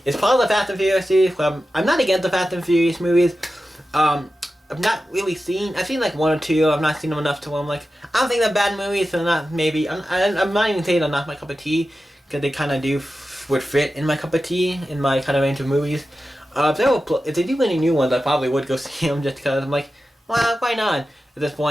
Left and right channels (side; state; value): both; normal; correlation 0.93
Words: It's part of the Fast and Furious series. I'm not against the Fast and Furious movies. I've not really I've seen like one or two. I've not seen them enough to where I'm like, I don't think they're bad movies, so not maybe. I'm not even saying they're not my cup of tea, because they kind of would fit in my cup of tea, in my kind of range of movies. If they do any new ones, I probably would go see them just because I'm like, well, why not at this